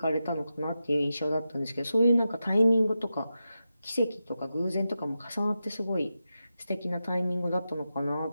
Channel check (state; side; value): inverted; both; correlation -0.90